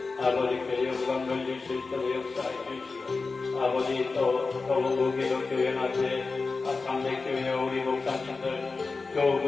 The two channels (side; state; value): right; quieter; 4.1 dB